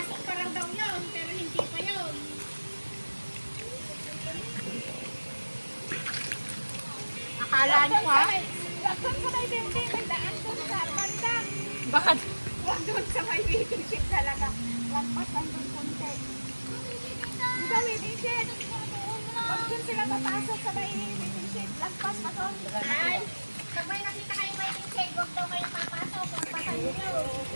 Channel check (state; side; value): inverted; both; correlation -1.00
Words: pa lang daw yun, pero hindi pa yun. Akala niyo ha? Doon sa may building, may daan doon sa banda. Bakit? Huwag doon sa may waiting shed talaga. Lampas lang doon konti. Di ba waiting shed? Huwag doon sila papasok sa may waiting shed. Lampas pa doon. Ay, pag may nakita kayong waiting shed, huwag daw kayo papasok. Lampasan niyo.